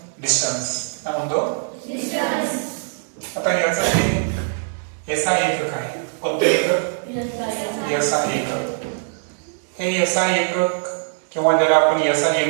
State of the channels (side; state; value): left; silent; digital silence